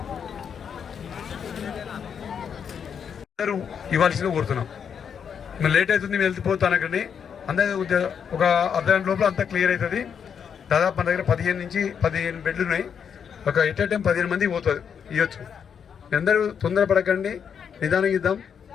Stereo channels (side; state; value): right; quieter; 7.4 dB